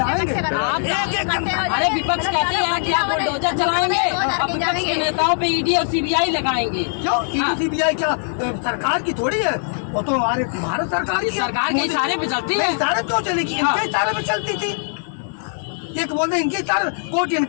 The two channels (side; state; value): right; silent; digital silence